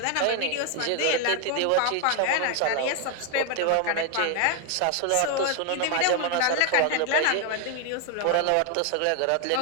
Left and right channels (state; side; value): different; both; correlation 0.01